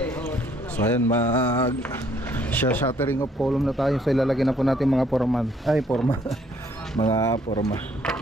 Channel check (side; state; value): both; normal; correlation 0.65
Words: So ayan, shattering of column na tayo. So ilalagay na po natin mga forma. Mga forma.